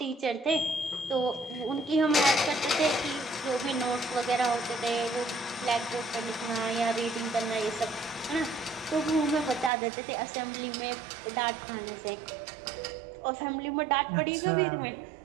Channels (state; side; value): drops out; left; at 9.7 s